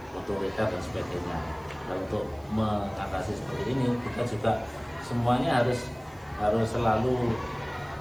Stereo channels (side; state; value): right; noise; hiss, 29 dB below the sound